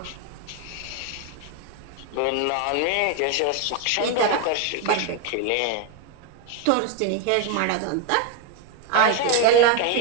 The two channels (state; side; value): different; both; correlation 0.02